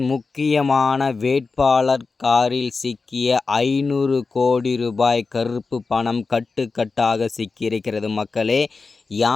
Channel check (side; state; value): right; quieter; 4.3 dB